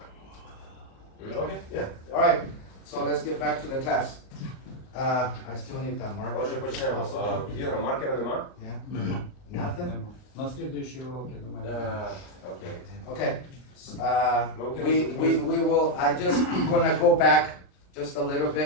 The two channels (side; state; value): right; late; 39 ms